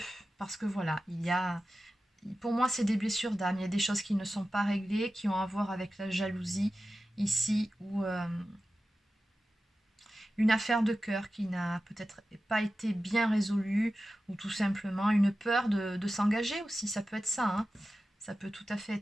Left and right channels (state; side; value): normal; both; correlation 0.94